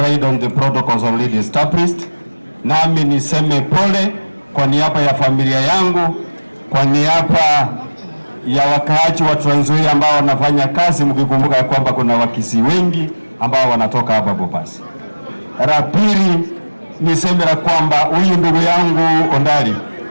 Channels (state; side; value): inverted; both; correlation -1.00